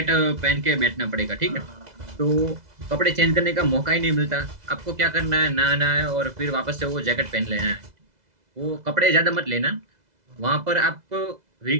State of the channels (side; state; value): left; late; 2.0 ms